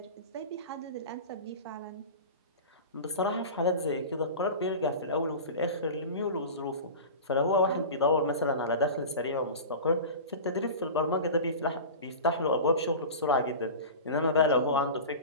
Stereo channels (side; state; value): both; inverted; correlation -0.32